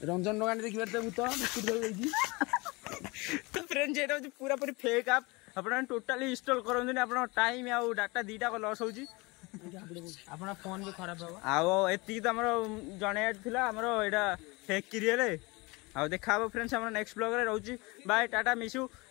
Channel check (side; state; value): right; quieter; 25.3 dB